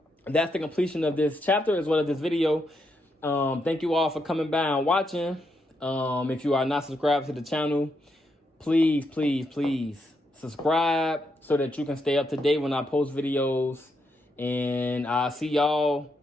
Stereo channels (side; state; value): both; normal; correlation 0.80